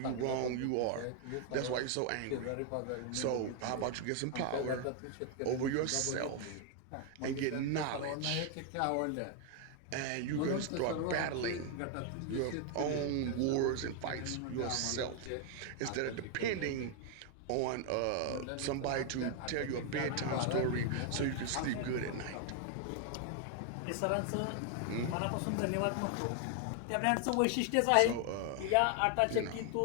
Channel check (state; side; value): different; both; correlation 0.00